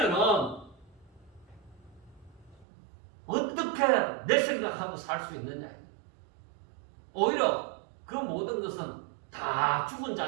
어떻게 내 생각하고 살 수 있느냐. 오히려 그 모든 것은 다 죽은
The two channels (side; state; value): left; drops out; at 2.7 s